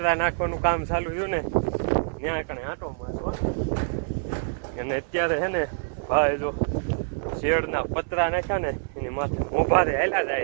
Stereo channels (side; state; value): left; silent; 57 dB below the other